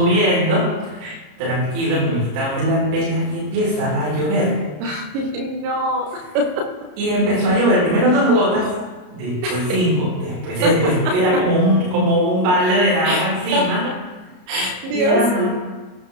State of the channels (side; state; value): left; late; 33 ms